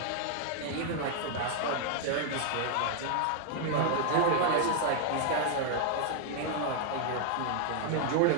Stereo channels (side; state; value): both; different; correlation 0.00